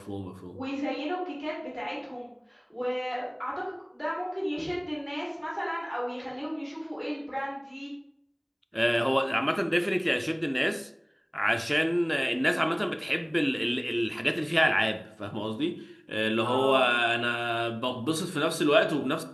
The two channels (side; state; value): both; identical; correlation 1.00